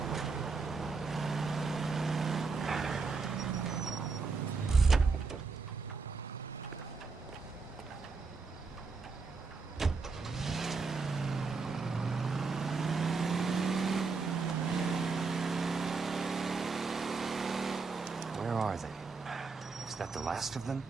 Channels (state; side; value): quieter; left; 4.4 dB